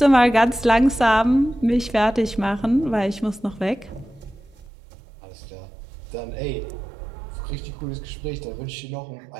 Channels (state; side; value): drops out; left; at 4.7 s